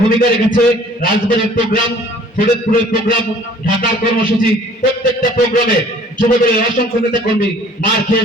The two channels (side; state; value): both; normal; correlation 0.53